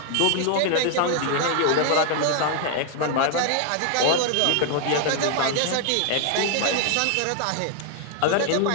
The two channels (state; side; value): different; both; correlation 0.00